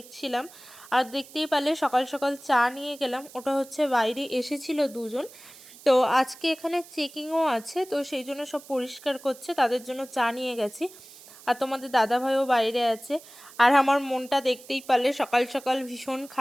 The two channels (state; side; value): noise; right; hiss, 20 dB below the sound